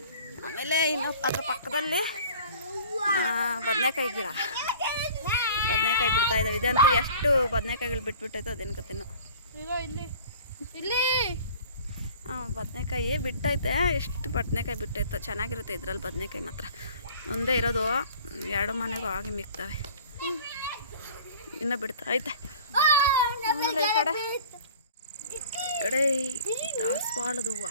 ಆಮೇಲೆ ಇನ್ನು ಅದ್ರ ಪಕ್ಕದಲ್ಲಿ ಬದನೆಕಾಯಿ ಗಿಡ. ಬದನೆಕಾಯಿ ಬಿಡ್ತಾ ಇದ್ದಾವೆ. ಇದಂತೂ ಎಷ್ಟು ಬದನೆಕಾಯಿಗಳು ಬಿಟ್ಬಿಟ್ಟೈತೋ ಅದೇನು ಕತೆನೋ. ಬದನೆಕಾಯಿ ಬಿಟ್ಟೈತೆ. ಎಷ್ಟು ಬದನೆಕಾಯಿ ಬಿಟ್ಟೈತೋ. ಚೆನ್ನಾಗಿರುತ್ತೆ ಇದ್ರಲ್ಲಿ ಬದನೆಕಾಯಿ ಮಾತ್ರ. ಒಂದೇ ಇರೋದು, 2 ಮನೆಗೂ ಆಗಿ ಮಿಕ್ತವೆ. ಇನ್ನೂ ಬಿಡ್ತಾ ಐತೆ. ಆಮೇಲೆ ಈ ಕಡೆ ದಾಸವಾಳದ ಹೂವು,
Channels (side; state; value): both; inverted; correlation -0.46